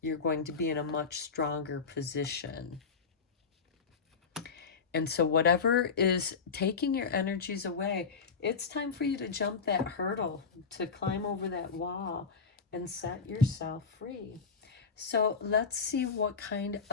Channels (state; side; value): quieter; right; 5.3 dB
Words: You're going to be in a much stronger position. And so whatever is taking your energies away, it's time for you to jump that hurdle, to climb over that wall and set yourself free. So let's see what kind